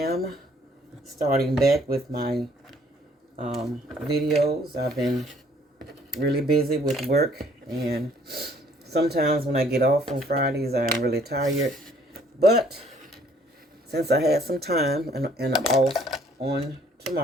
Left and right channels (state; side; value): normal; both; correlation 0.61